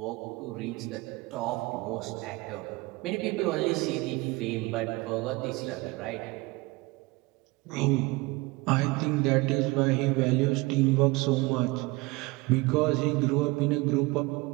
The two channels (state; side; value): quieter; left; 23.0 dB